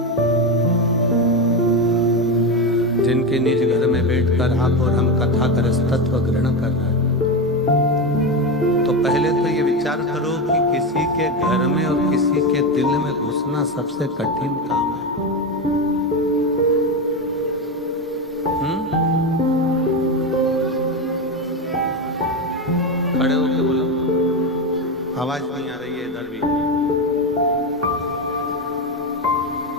जिनके निज घर में बैठकर आप और हम कथा का रसतत्व ग्रहण कर रहे हैं, तो पहले तो ये विचार करो कि किसी के घर में और किसी के दिल में घुसना सबसे कठिन काम है। खड़े होके बोलो, आवाज नहीं आ रही है इधर भी।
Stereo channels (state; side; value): normal; both; correlation 0.14